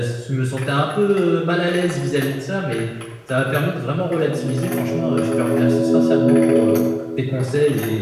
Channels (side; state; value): both; identical; correlation 1.00